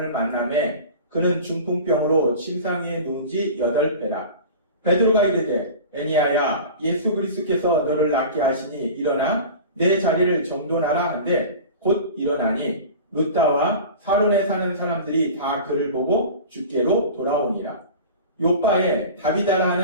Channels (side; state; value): both; inverted; correlation -0.36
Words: 만나매 그는 중풍병으로 침상 위에 누운 지 8배라. 베드로가 이르되 애니아야 예수 그리스도께서 너를 낫게 하시니 일어나 내 자리를 정돈하라 한데 곧 일어나니 루다와 사론에 사는 사람들이 다 그를 보고 주께로 돌아오니라. 요바에 다비다라